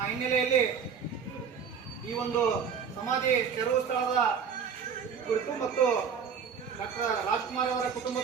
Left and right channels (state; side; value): quieter; left; 6.7 dB